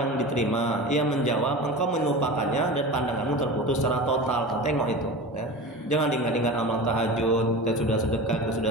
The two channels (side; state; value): both; normal; correlation 0.31